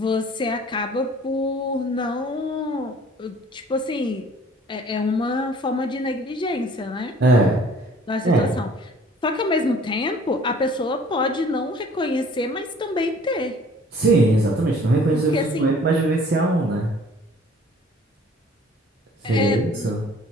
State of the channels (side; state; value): both; normal; correlation 0.53